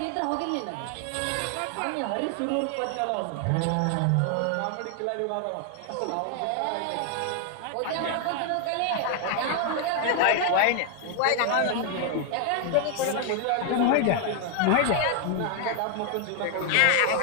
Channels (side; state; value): both; different; correlation 0.00